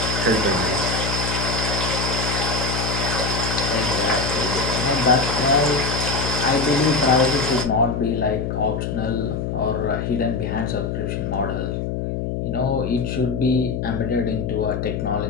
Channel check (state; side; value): noise; left; hum, 2 dB below the sound